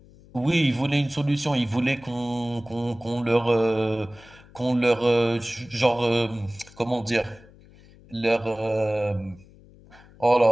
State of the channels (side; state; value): left; noise; hum, 24 dB below the sound